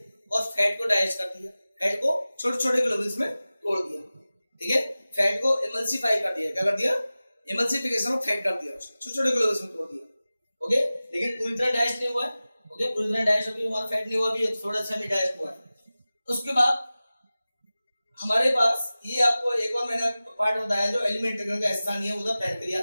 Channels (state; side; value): inverted; both; correlation -0.97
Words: और फैट को डाइजेस्ट कर दिया, फैट को छोटे छोटे ग्लोबुल्स में तोड़ दिया। ठीक है, फैट को इमल्सिफाई कर दिया। क्या कर दिया, इमल्सिफिकेशन ऑफ फैट कर दिया, छोटे छोटे ग्लोबुल्स में तोड़ दिया। ओके, लेकिन पूरी तरह डाइजेस्ट नहीं हुआ है। ओके, पूरी तरह डाइजेस्ट अभी हमारा फैट नहीं हुआ, अभी थोड़ा सा भी डाइजेस्ट हुआ है। उसके बाद हमारे पास ये आपको एक और मैंने पार्ट बताया जो एलिमेंट्री का हिस्सा नहीं है, वो था